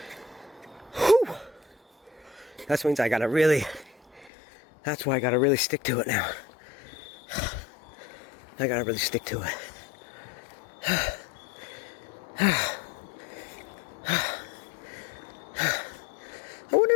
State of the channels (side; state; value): right; drops out; at 4.3 s